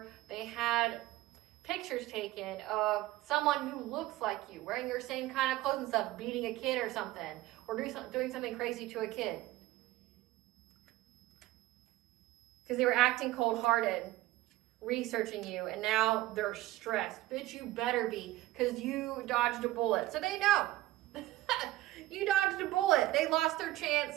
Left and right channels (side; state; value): left; quieter; 16.6 dB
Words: they had pictures taken of someone who looks like you, wearing your same kind of clothes and stuff, beating a kid or something, or doing something crazy to a kid. Because they were acting cold-hearted, researching you, and now they're stressed. Bitch, you better be, because you dodged a bullet. So they know. You dodged a bullet. They lost their